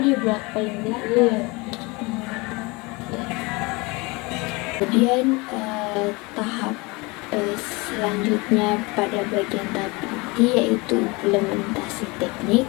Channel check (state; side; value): quieter; right; 25.7 dB